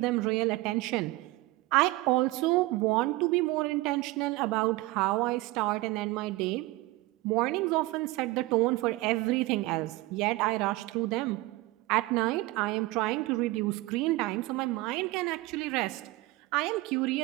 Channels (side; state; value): left; quieter; 20.0 dB